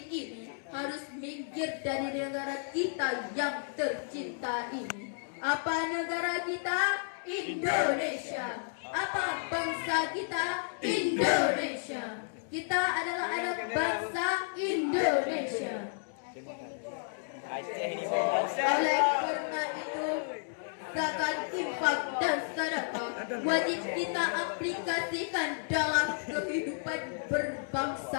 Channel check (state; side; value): silent; right; digital silence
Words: ini harus minggir dari negara kita yang tercinta ini. Apa negara kita? Indonesia. Apa bangsa kita? Indonesia. Kita adalah anak bangsa Indonesia. Oleh karena itu, zakat, infak, dan sedekah wajib kita aplikasikan dalam kehidupan